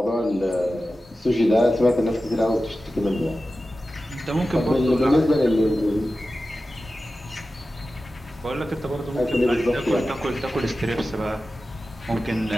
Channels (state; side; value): normal; both; correlation 0.94